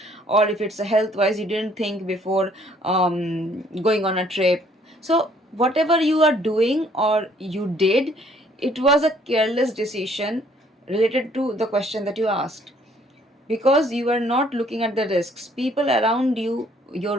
Or if it's a health wise, you didn't think before going on a trip. So whatever you are doing or you did, it was a careless decision related to the question that you asked, because you are not looking at the risks. People around you, your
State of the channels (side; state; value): both; normal; correlation 0.62